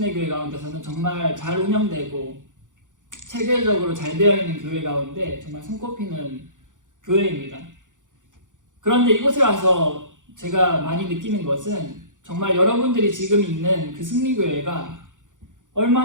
가운데서는 정말 잘 운영되고 체계적으로 잘 되어 있는 교회 가운데 정말 손꼽히는 교회입니다. 그런데 이곳에 와서 제가 많이 느끼는 것은 정말 여러분들이 지금 있는 그 승리교회가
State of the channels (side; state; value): left; late; 0.87 ms